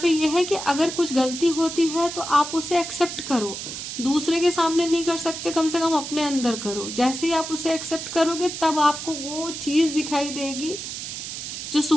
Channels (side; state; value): right; noise; hiss, 7 dB below the sound